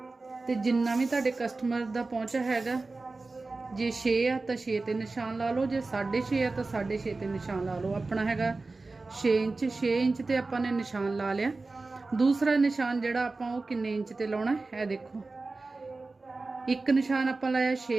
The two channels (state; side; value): quieter; left; 3.5 dB